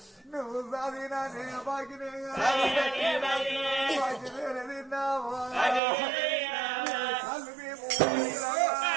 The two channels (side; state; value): left; drops out; at 5.8 s